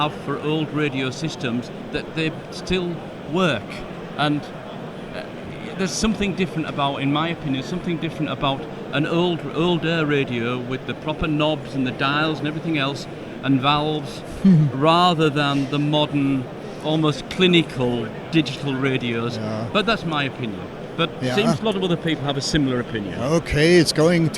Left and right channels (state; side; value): identical; both; correlation 1.00